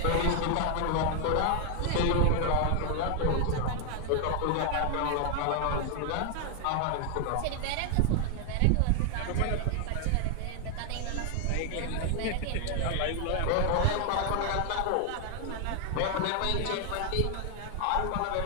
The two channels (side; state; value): both; different; correlation 0.00